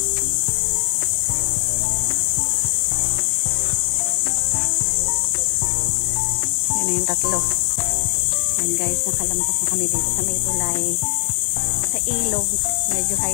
Yan na yung tatlo. Yan guys, nakalampas na kami dito sa may tulay. Sa ilog, medyo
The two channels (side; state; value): right; silent; digital silence